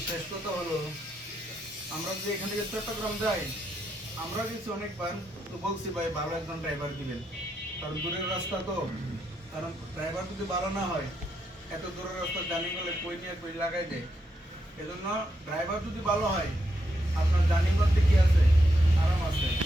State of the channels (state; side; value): normal; both; correlation 0.81